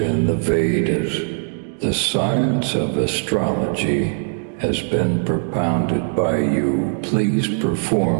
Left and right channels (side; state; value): left; silent; 66 dB below the other